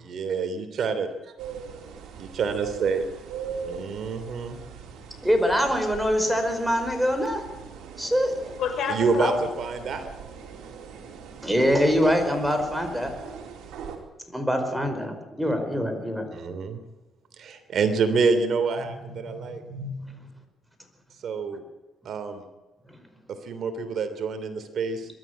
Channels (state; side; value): normal; both; correlation 0.80